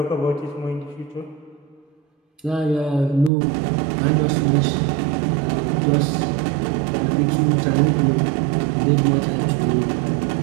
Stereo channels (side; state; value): left; drops out; at 3.3 s